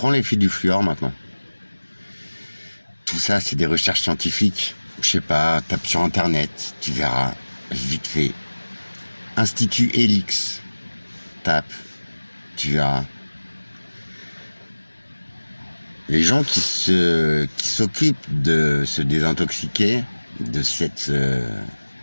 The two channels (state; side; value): inverted; both; correlation -1.00